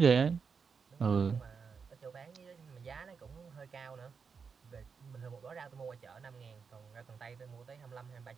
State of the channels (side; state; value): left; quieter; 5.8 dB